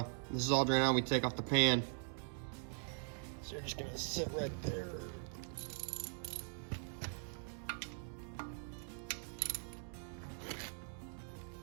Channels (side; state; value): left; silent; 50 dB below the other